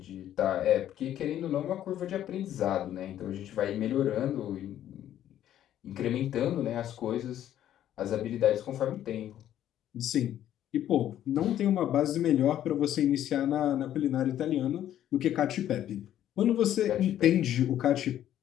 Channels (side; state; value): right; quieter; 11.5 dB